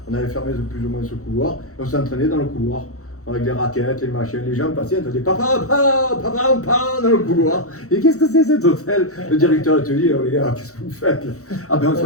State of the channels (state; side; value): late; right; 0.65 ms